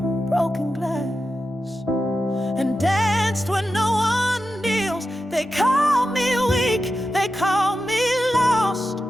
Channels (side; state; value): both; normal; correlation 0.90